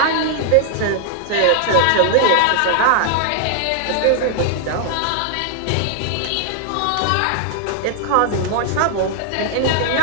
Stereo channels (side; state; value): both; different; correlation 0.00